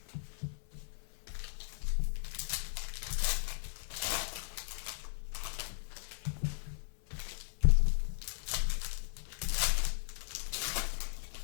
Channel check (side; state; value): right; silent; 53 dB below the other